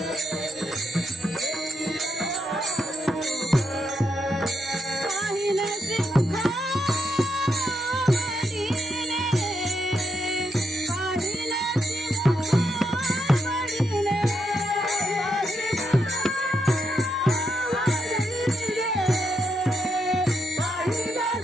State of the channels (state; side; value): normal; both; correlation 0.80